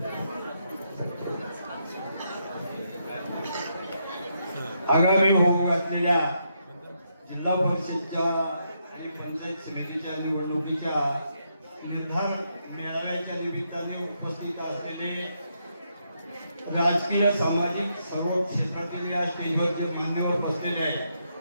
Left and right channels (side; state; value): both; inverted; correlation -0.79